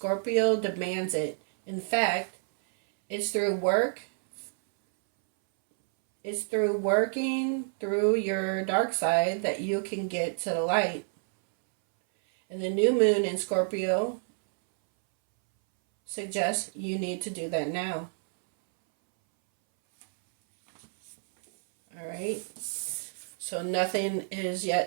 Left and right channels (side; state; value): left; silent; 59 dB below the other